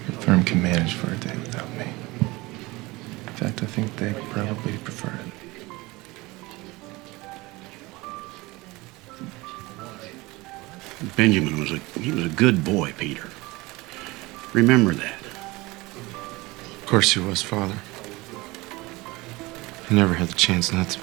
firm can manage for a day without me. In fact, I think they probably prefer it. Benjamin was a good boy, Peter. Remember that. Of course he was, Father. He never had the chance not to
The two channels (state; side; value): quieter; left; 22.1 dB